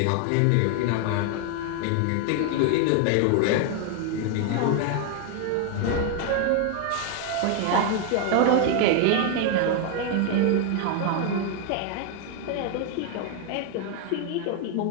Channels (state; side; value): different; both; correlation 0.01